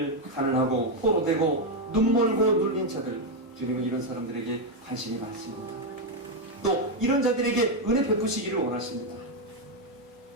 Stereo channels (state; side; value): normal; both; correlation 0.04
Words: 가난하고 포로되고 눈멀고 눌린 자들, 주님은 이런 사람들에게 관심이 많습니다. 또 이런 자들에게 은혜 베푸시기를 원하십니다.